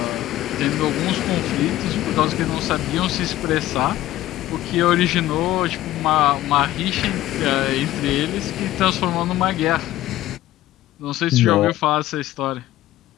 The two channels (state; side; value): quieter; right; 14.9 dB